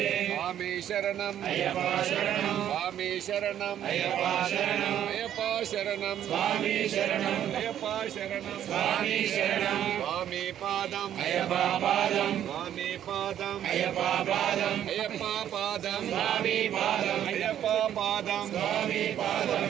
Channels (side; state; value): left; quieter; 10.7 dB